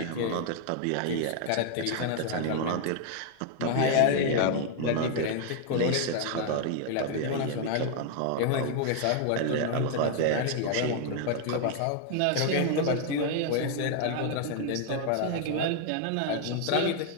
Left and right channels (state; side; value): different; both; correlation 0.00